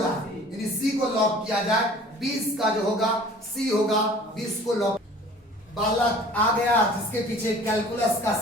है, यानी सी को लॉक किया जाए। 20 का जो होगा सी होगा, 20 को लॉक। बालक आ गया जिसके पीछे कैलकुलस का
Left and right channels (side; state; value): both; normal; correlation 0.47